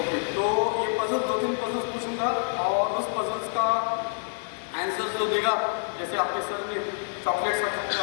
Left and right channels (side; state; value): right; silent; digital silence